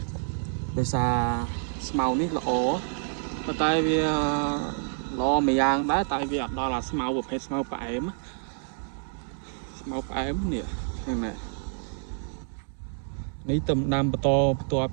ដោយសារស្មៅនេះល្អប៉ុន្តែវាល្អមួយយ៉ាងដែរតែវាអត់ដល់អាស្មៅប្រភេទស្មៅផ្អែមនេះហ្នឹងណានេះទំដាំបន្តបន្ទាប់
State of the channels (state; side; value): silent; left; 59 dB below the other